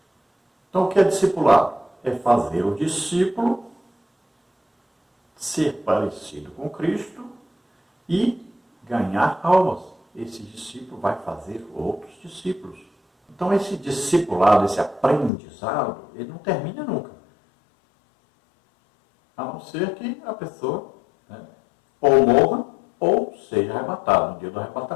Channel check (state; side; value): drops out; right; at 15.3 s